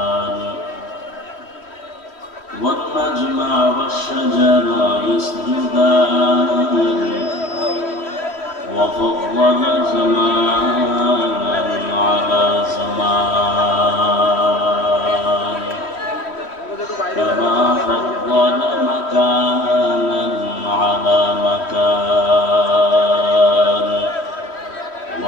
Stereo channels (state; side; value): late; right; 3.1 ms